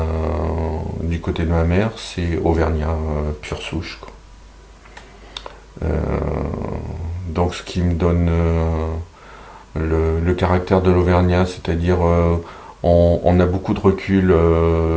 du côté de ma mère, c'est Auvergnat pure souche, quoi. Donc, ce qui me donne le caractère de l'Auvergnat, c'est-à-dire on a beaucoup de recul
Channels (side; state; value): both; identical; correlation 1.00